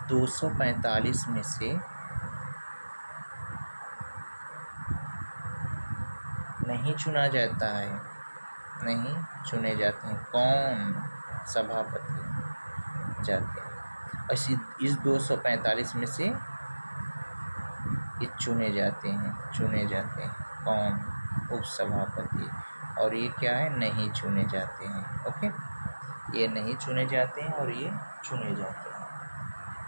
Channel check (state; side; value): inverted; both; correlation -1.00